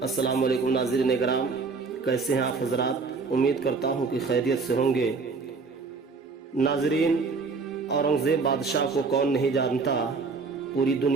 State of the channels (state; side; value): quieter; left; 4.5 dB